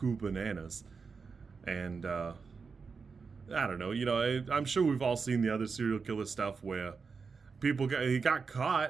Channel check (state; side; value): quieter; left; 5.1 dB